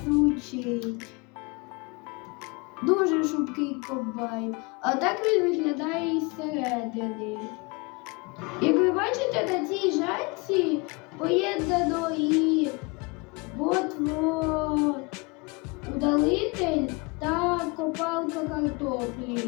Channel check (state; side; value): quieter; right; 28.5 dB